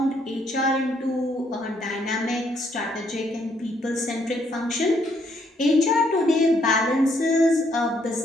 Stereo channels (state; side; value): normal; both; correlation 0.71